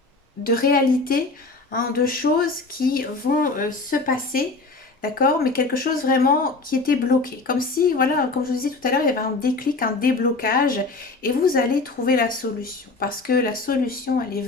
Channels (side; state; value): right; quieter; 3.6 dB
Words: réalité, hein, de choses qui vont se passer. D'accord, mais quelque chose vraiment qui était bloqué. Comme si, voilà, comme je vous disais tout à l'heure, il y avait un déclic, un déblocage, et vous allez trouver la solution. Parce que la solution, elle est